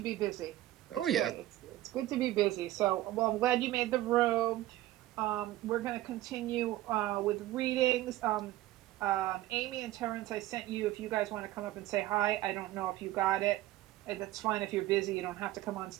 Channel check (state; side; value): quieter; left; 15.7 dB